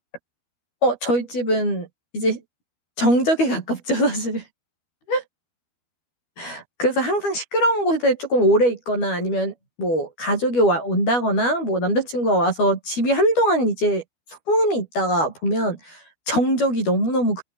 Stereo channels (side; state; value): right; late; 12 ms